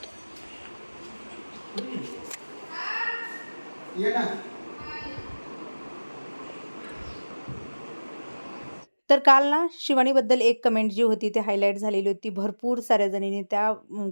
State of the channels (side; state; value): both; inverted; correlation -1.00